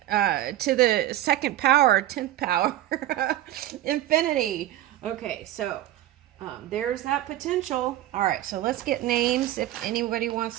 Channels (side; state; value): left; quieter; 13.7 dB